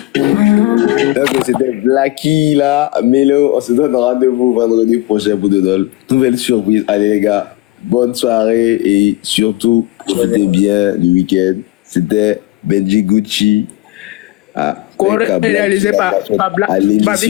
Donc c'était Blacky là, Mélo, on se donne rendez-vous vendredi prochain pour de nouvelles surprises. Allez les gars, bonne soirée et surtout profitez bien du week-end. C'était Benji Gucci réalisé par à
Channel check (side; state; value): right; quieter; 19.3 dB